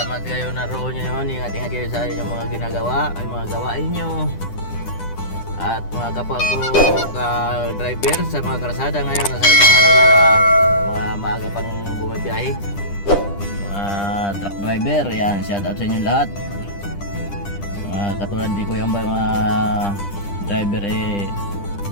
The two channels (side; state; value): right; late; 10 ms